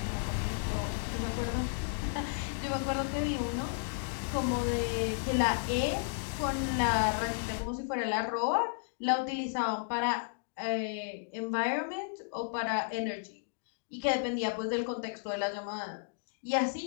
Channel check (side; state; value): right; silent; digital silence